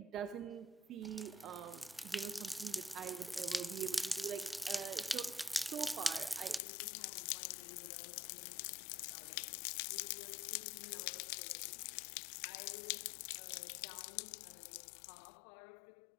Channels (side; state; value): right; drops out; at 6.6 s